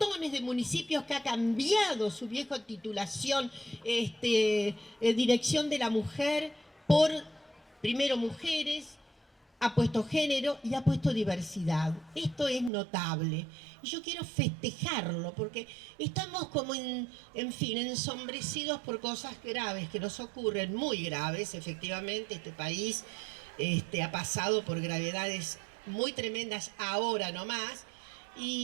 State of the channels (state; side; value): drops out; left; at 12.7 s